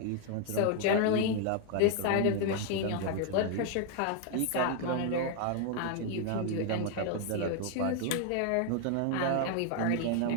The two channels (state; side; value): different; both; correlation 0.00